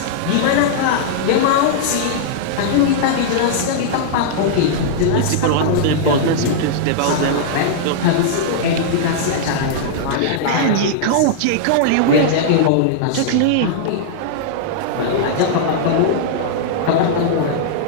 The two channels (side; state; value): both; different; correlation -0.01